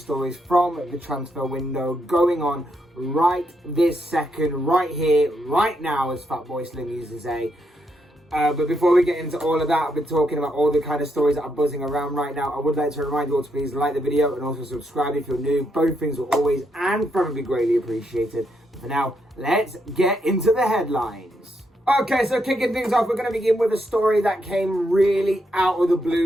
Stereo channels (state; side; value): normal; both; correlation 0.79